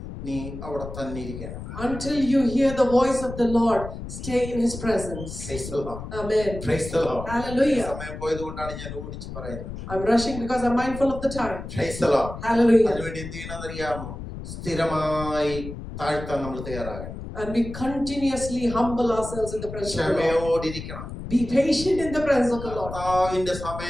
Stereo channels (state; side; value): noise; left; rumble, 10 dB below the sound